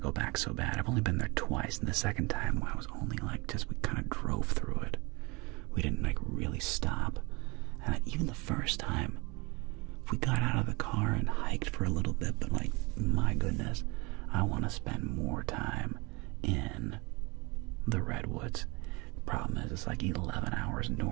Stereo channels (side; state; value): left; quieter; 26.5 dB